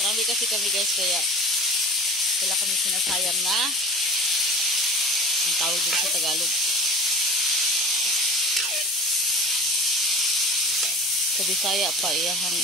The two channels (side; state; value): both; normal; correlation 0.36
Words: Marami kasi kami, guys, kaya wala kami sinasayang na ang tawag din sa Tagalog. Sa Bisaya pa, iyahang